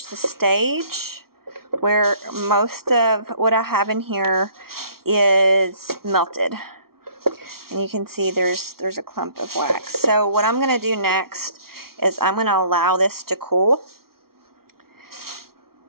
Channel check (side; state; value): left; late; 0.94 ms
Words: the stage where most of what I have in here is melted. And you can see there's a clump of wax. So what I'm going to do next is I'm going to allow this to cool.